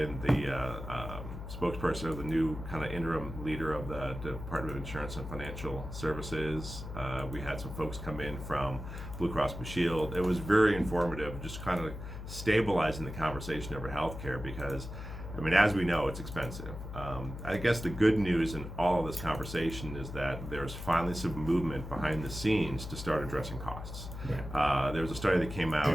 the spokesperson of the new kind of interim leader of the Department of Insurance and Financial Services. We had some folks come in from Blue Cross Blue Shield. It was very informative, just kind of stabilizing the conversation over healthcare because, I mean, as we know, it's expensive. I guess the good news in all of this conversation is that there's finally some movement behind the scenes to start addressing costs. Right. There was a study that came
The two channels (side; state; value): left; noise; hum, 9 dB below the sound